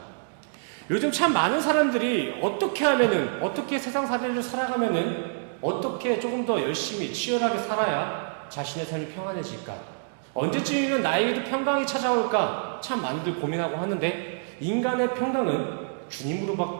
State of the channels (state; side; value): silent; left; digital silence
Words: 요즘 참 많은 사람들이 어떻게 세상 사례를 살아가면은 어떻게 조금 더 열심히 치열하게 살아야 자신의 삶이 평안해질까? 언제쯤이면 나에게도 평강이 찾아올까? 참 많이들 고민하고 하는데 인간의 평강은